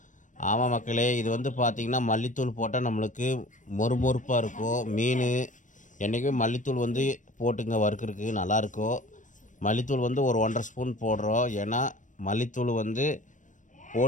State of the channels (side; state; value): right; late; 0.37 ms